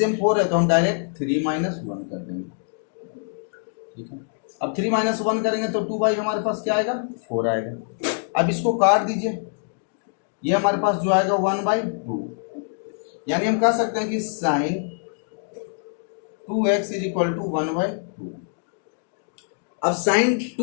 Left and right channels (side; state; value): right; silent; digital silence